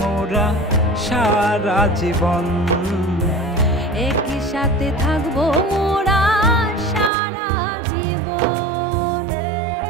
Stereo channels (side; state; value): left; drops out; at 7.1 s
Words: মোরা সারা জীবন। একই সাথে থাকবো মোরা সারা জীবন।